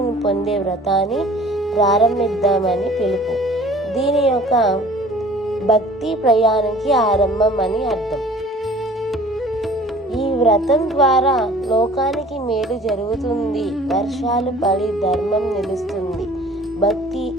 పొందే వ్రతాన్ని ప్రారంభిద్దామని పిలుపు. దీని యొక్క భక్తి ప్రయాణానికి ఆరంభం అని అర్థం. ఈ వ్రతం ద్వారా లోకానికి మేలు జరుగుతుంది, వర్షాలు పడి ధర్మం నిలుస్తుంది, భక్తి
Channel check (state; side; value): normal; both; correlation 0.49